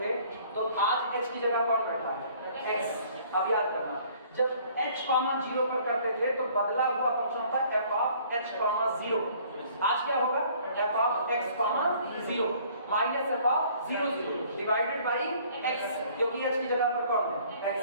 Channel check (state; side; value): inverted; both; correlation -0.56